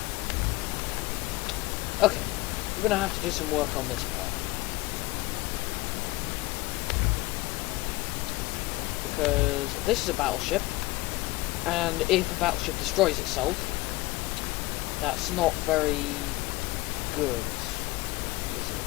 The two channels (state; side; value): quieter; right; 20.5 dB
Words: Okay, we're gonna have to do some work on this part. Because this is a battleship, and if a battleship destroys itself, that's not very good, is it?